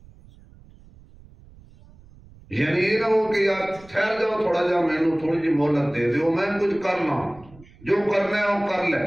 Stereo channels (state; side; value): noise; right; rumble, 24 dB below the sound